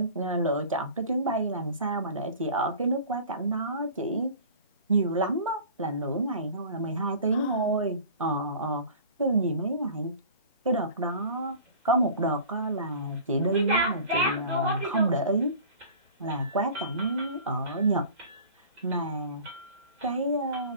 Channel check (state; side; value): inverted; both; correlation -0.42